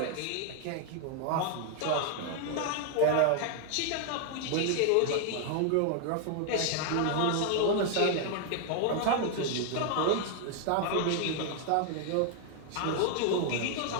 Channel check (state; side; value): different; both; correlation 0.00